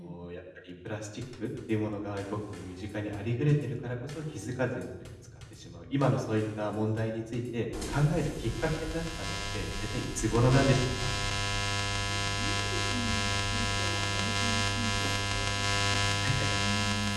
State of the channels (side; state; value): both; identical; correlation 1.00